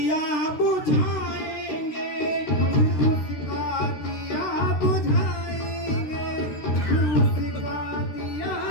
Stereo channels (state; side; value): late; right; 13 ms